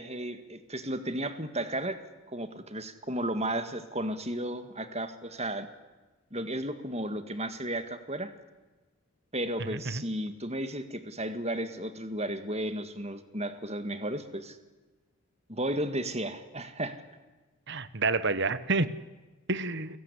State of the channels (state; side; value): normal; both; correlation 0.25